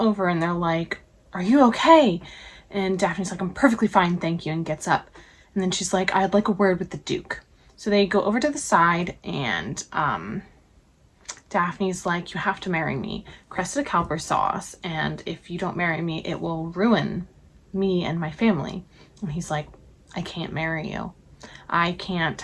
and they're like, are you okay? And Daphne's like, I'm perfectly fine, thank you, and gets up. And then she's like, I'd like a word with the Duke. So they go over to the side, and Daphne's like, you have to marry me. Cressida Cowper saw us, and if you don't marry me, it will ruin me and my family. And he's like, I can't marry you. I can't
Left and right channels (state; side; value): identical; both; correlation 1.00